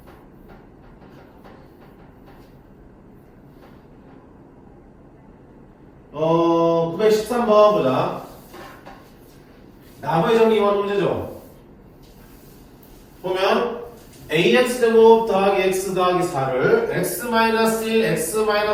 어, 913번 보자. 나머지 정리 이원 문제죠. 보면 ax 제곱 더하기 x 더하기 4를 x-1,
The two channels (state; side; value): identical; both; correlation 1.00